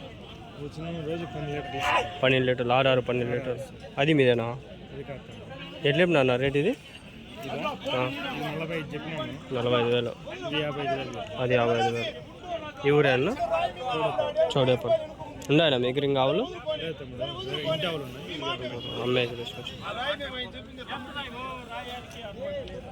12 లీటర్లు. 6 12 లీటర్లు. అది మీదేనా? ఎట్లా అన్న రేట్ ఇది? 45,000. అది 55,000. ఈ ఊరే అన్న? చౌడేపల్లి. ఉన్నాయన్నా మీకు ఇంకా ఆవులు? అమ్మాయికి తీసుకొచ్చి.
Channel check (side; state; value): both; identical; correlation 1.00